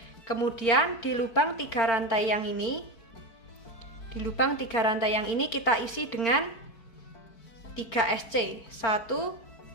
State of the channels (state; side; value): late; right; 4.4 ms